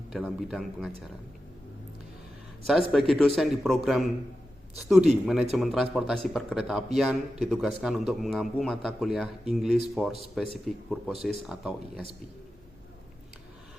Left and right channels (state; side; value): normal; both; correlation 0.91